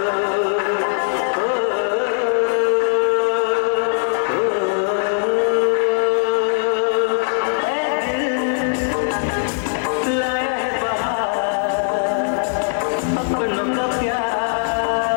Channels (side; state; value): right; silent; digital silence